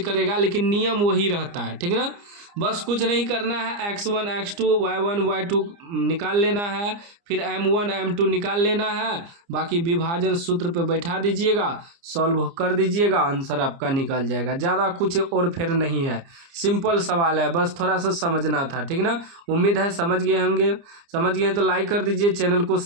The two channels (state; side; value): late; left; 29 ms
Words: लेकिन नियम वही रहता है, ठीक ना। बस कुछ नहीं करना है, x1 x2 y1 y2 निकाल लेना है, फिर m1 m2 निकाल लेना है, बाकी विभाजन सूत्र पे बैठा दीजिएगा, सॉल्व कर दीजिएगा, आंसर आपका निकल जाएगा। ज़्यादा कुछ और फिर नहीं है, सिंपल सवाल है, बस थोड़ा सा समझना था, ठीक ना। उम्मीद है समझ गए होंगे, समझ गए तो लाइक कर दीजिए, चैनल को